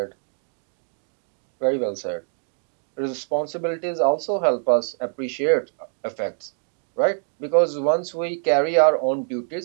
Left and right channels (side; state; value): left; silent; digital silence